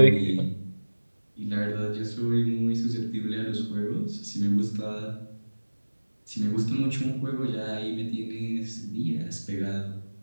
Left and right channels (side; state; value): both; inverted; correlation -1.00